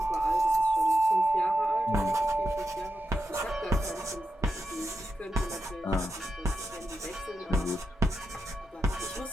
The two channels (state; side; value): normal; both; correlation 0.87